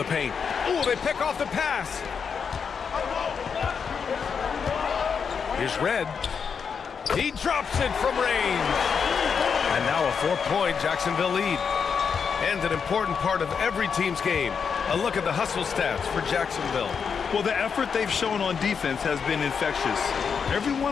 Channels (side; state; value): right; quieter; 6.3 dB